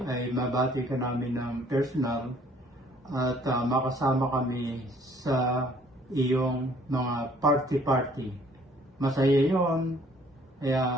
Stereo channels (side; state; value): both; normal; correlation 0.59